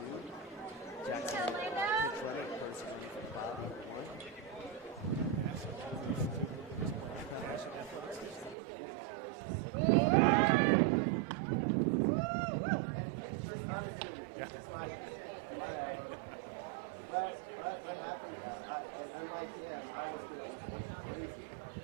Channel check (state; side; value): drops out; left; at 8.6 s